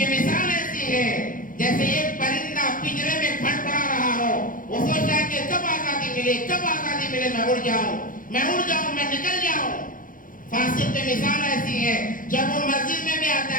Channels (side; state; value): right; late; 0.40 ms